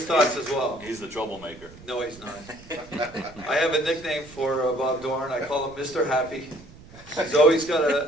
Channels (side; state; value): right; noise; rumble, 20 dB below the sound